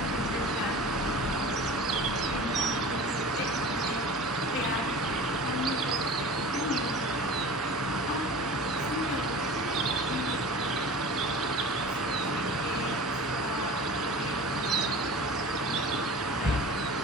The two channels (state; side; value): normal; both; correlation 0.37